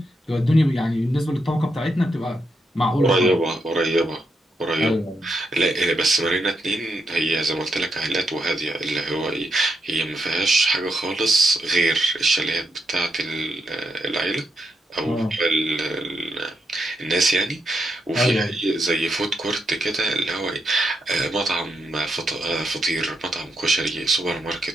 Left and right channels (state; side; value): normal; both; correlation 0.81